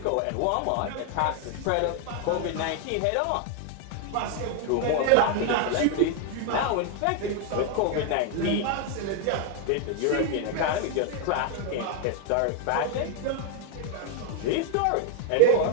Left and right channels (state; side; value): different; both; correlation 0.01